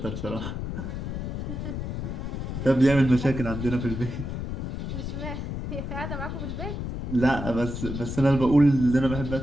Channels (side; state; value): left; noise; rumble, 5 dB below the sound